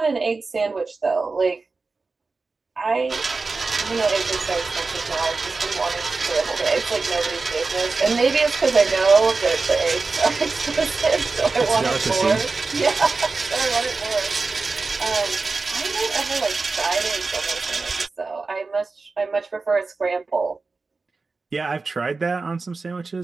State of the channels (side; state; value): left; quieter; 4.0 dB